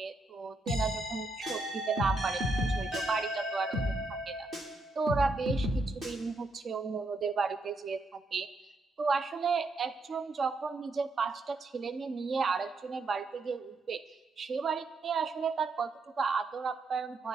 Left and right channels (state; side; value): quieter; left; 3.2 dB